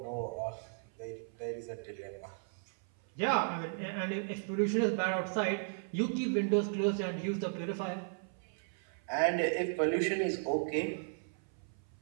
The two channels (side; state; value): left; silent; 54 dB below the other